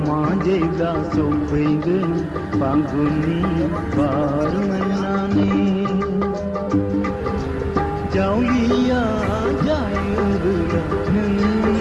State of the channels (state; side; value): identical; both; correlation 1.00